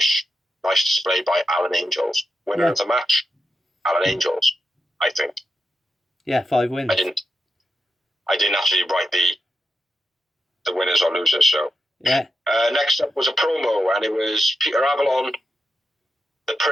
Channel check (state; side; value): normal; both; correlation 0.86